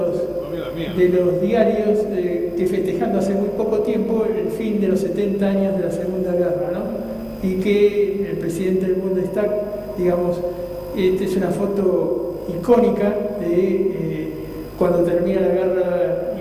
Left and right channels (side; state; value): both; identical; correlation 1.00